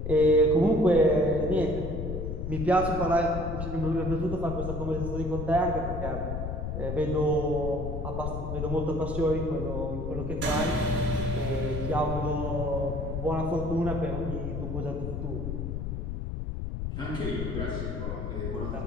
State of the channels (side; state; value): left; noise; rumble, 4 dB below the sound